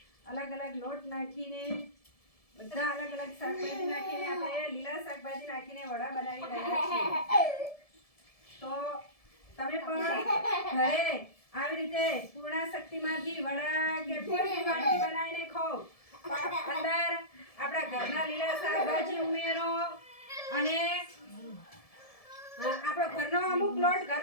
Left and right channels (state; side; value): late; right; 1.7 ms